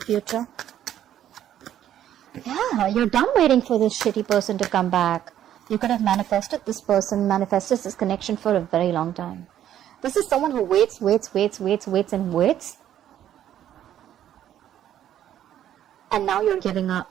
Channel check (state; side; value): quieter; left; 11.1 dB